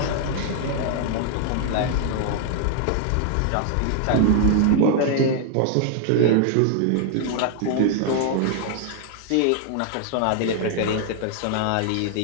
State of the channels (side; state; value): both; different; correlation 0.00